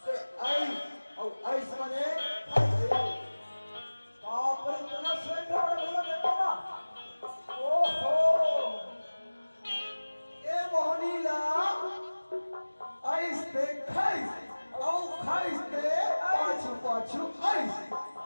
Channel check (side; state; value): both; inverted; correlation -1.00